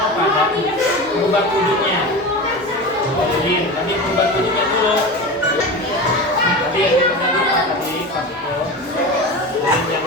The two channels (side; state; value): both; normal; correlation 0.28